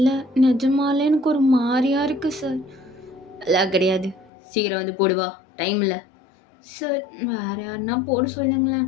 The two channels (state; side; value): drops out; right; at 4.3 s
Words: நிஜமாலே எனக்கு ஒரு மாதிரியாக இருக்குது சார். எல்லாம் கிடையாது, சீக்கிரம் வந்து போடுவா, டைம் இல்லை. சார் வேறு யாருன்னா போட சொல்லுங்களேன்,